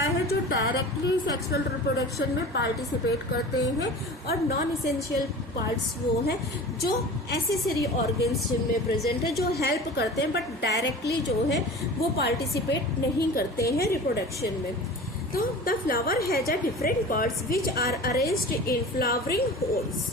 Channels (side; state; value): both; normal; correlation 0.37